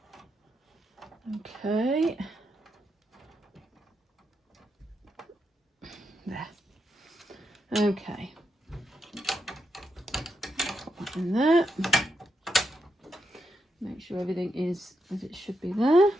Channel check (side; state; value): both; normal; correlation 0.83